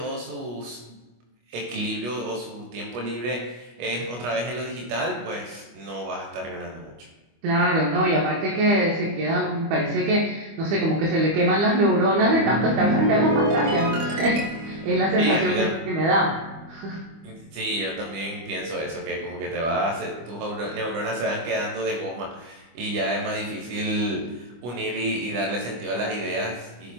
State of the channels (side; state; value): left; late; 25 ms